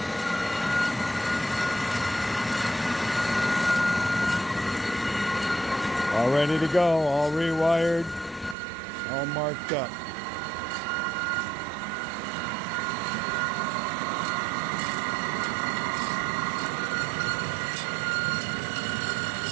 All ready to go, all rewired, all marked up.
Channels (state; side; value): drops out; left; at 8.6 s